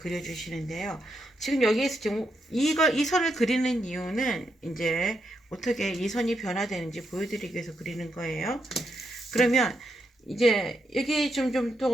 지금 여기에서 지금 이 선을 그리는 이유는 이제 어떻게 이 선이 변화되는지 보여드리기 위해서 그리는 거예요. 그러면 이제 여기 좀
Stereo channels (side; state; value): both; normal; correlation 0.81